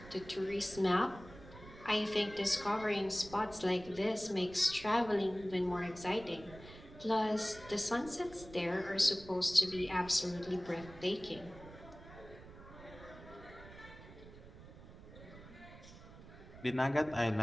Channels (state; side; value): noise; right; rumble, 17 dB below the sound